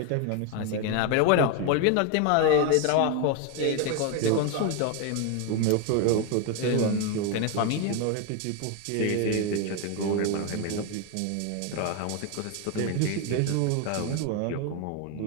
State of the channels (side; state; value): both; different; correlation 0.01